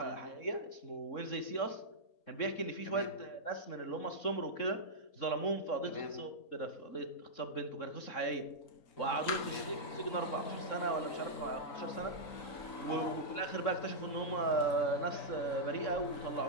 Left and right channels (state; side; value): late; right; 3.6 ms